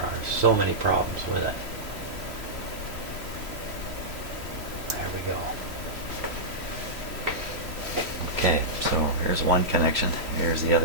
are so many problems with it. There we go. Okay, so here's one connection. Here's the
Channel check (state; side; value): late; left; 3.1 ms